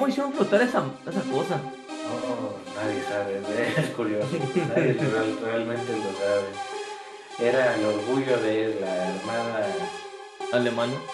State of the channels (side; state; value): both; identical; correlation 1.00